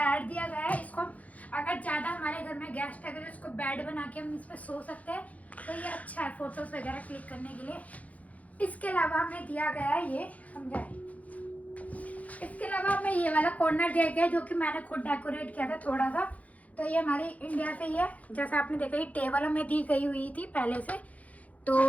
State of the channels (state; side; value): late; right; 0.070 ms